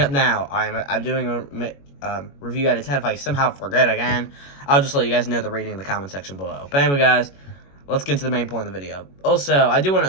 up now. I'm doing a review out of 10. If I somehow forget again, I'll just let you guys know the rating in the comment section below. But anyway, guys, let's get to the main point of the video. Also,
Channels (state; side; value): late; right; 21 ms